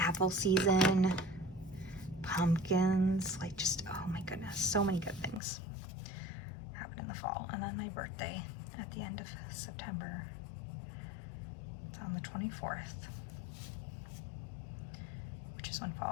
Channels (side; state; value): right; drops out; at 5.4 s